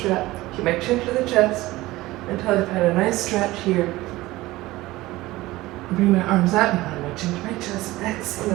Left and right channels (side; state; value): left; quieter; 18.5 dB